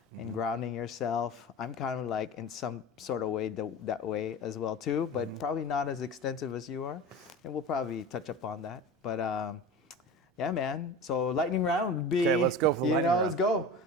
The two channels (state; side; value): normal; both; correlation 0.32